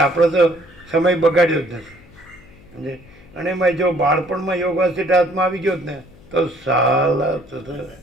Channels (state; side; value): noise; left; hum, 25 dB below the sound